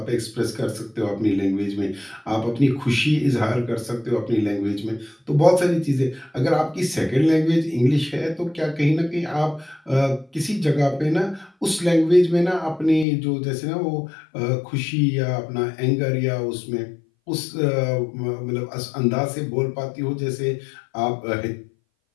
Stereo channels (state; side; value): drops out; right; at 13.1 s